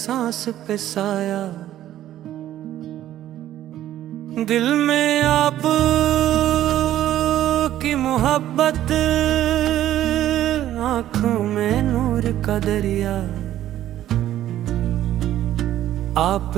पे साया, दिल में आप की मोहब्बत, आँखों में नूर का दरिया।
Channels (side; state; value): left; quieter; 12.6 dB